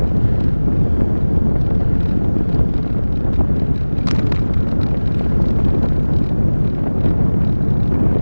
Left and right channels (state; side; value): inverted; both; correlation -1.00